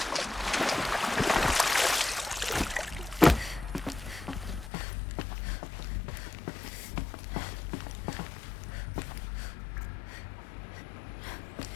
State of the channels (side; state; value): right; drops out; at 4.7 s